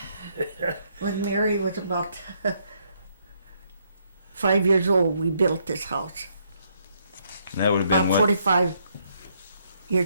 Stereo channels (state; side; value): inverted; both; correlation -0.72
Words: When Mary was about 5 years old, we built this house. And that would have been About what? 45